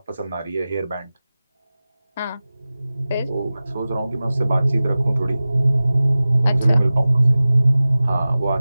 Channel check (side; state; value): both; inverted; correlation -0.97